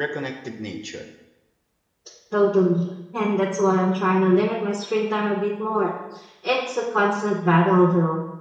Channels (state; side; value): identical; both; correlation 1.00